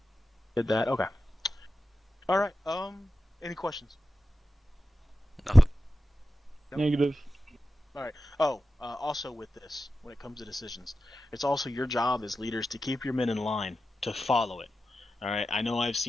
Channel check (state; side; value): normal; both; correlation 0.92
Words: Did that. Okay. All right. Any questions? Nothing. Nope. Negative. All right. Oh, also with this, when it comes to decisions, it's also your job as leaders to keep your men in line, to follow it. All right. I know I've